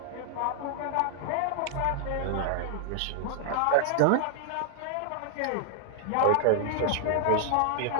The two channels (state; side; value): different; both; correlation 0.00